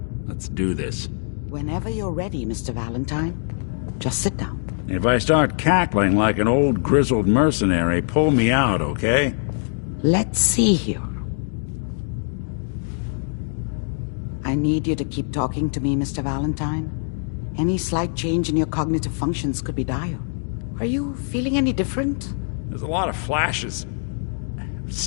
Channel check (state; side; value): silent; right; digital silence